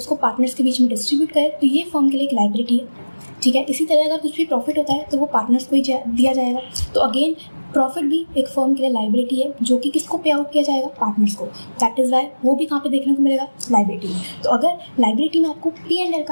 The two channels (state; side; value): inverted; both; correlation -1.00